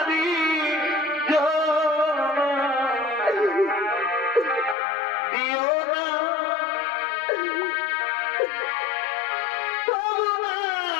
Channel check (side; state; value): right; drops out; at 4.8 s